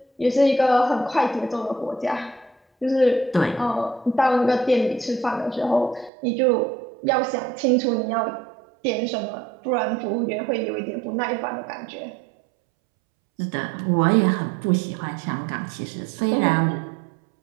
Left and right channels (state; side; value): drops out; left; at 6.1 s